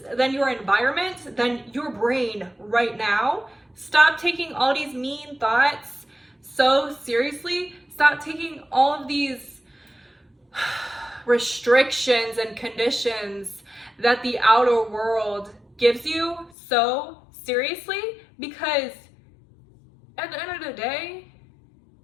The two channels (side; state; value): right; drops out; at 16.5 s